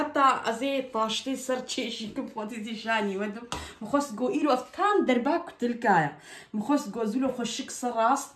أزي طاشتي سرتشي شيكم فوتي شاني ودم مخص جو إيرو أفتان درباك تلكايا مخص جو زولو خشك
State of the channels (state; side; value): identical; both; correlation 1.00